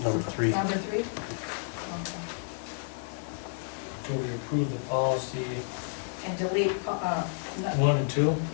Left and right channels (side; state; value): right; silent; digital silence